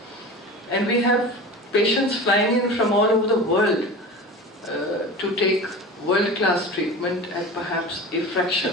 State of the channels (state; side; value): normal; both; correlation 0.33